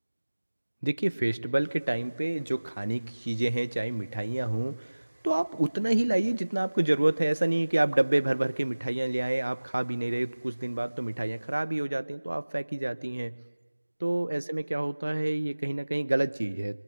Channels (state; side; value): inverted; both; correlation -1.00